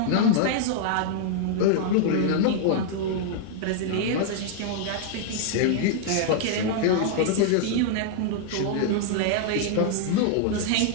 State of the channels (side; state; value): both; different; correlation -0.01